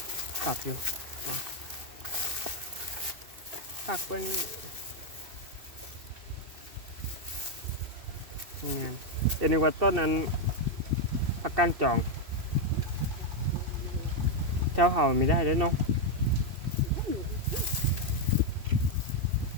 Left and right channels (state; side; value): late; left; 2.7 ms